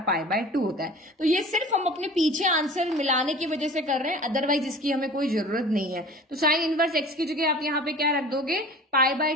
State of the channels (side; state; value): both; normal; correlation 0.41